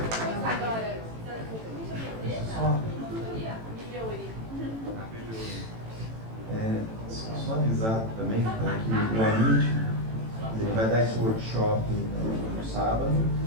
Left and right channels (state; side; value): late; left; 18 ms